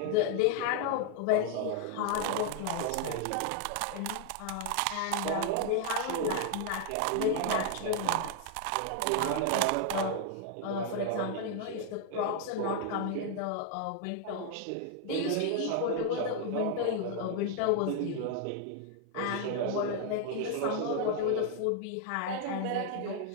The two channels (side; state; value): both; different; correlation 0.00